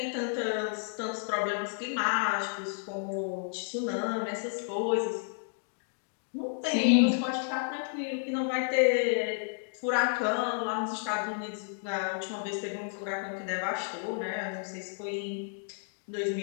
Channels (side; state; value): right; silent; digital silence